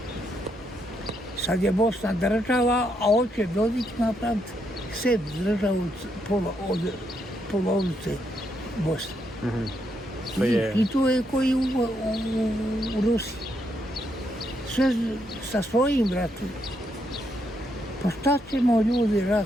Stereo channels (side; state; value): both; normal; correlation 0.78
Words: Sad je Bosna država, a hoće Dodik napraviti sebi državu od polovice Bosne. I to je koji u Rusiji. Sve sa svojim bratom. Pa šta ćemo ljudi rat?